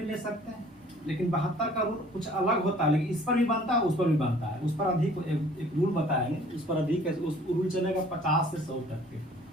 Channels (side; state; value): both; normal; correlation 0.54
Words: ले सकते हैं, लेकिन 72 का रूल कुछ अलग होता है, लेकिन इस पर भी बनता है, उस पर भी बनता है। उस पर अधिक एक रूल बताएंगे, उस पर अधिक है, उस रूल चलेगा 50 से 100 तक के,